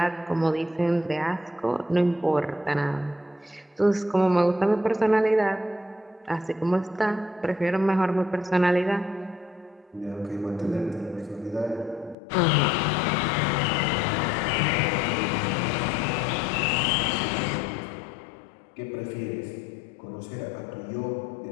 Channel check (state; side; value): drops out; right; at 12.2 s